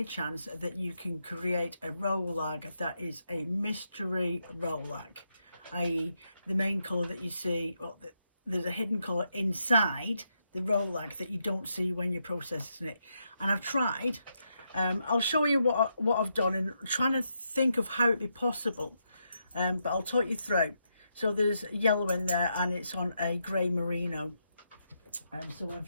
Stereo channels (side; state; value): both; inverted; correlation -0.81